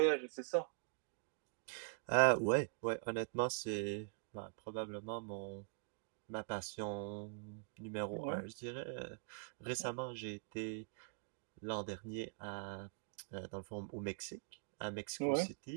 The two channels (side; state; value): left; silent; digital silence